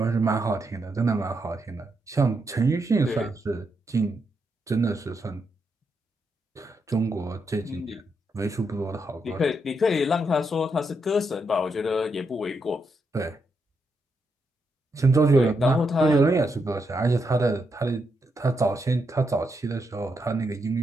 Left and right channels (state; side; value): normal; both; correlation 0.81